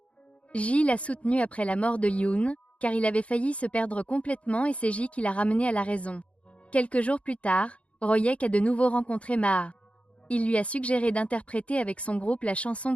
Ji l'a soutenu après la mort de Yoon, car il avait failli se perdre complètement et c'est Ji qui l'a ramené à la raison. Quelques jours plus tard, Royek a de nouveau rencontré Maa. Il lui a suggéré d'interpréter avec son groupe la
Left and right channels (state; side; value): late; right; 0.062 ms